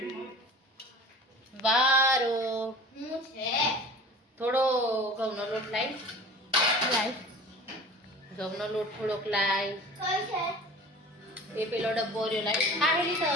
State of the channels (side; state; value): both; normal; correlation 0.40